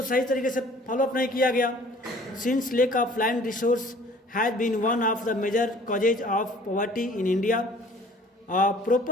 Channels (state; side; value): normal; both; correlation 0.51